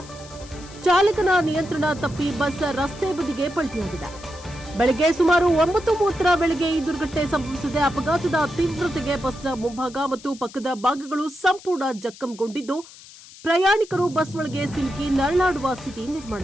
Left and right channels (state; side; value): noise; left; hiss, 19 dB below the sound